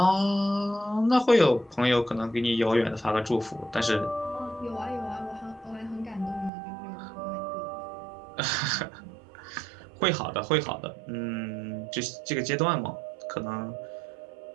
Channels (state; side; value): drops out; left; at 6.5 s